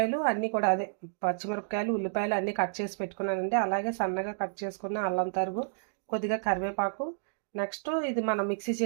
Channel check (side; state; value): left; silent; digital silence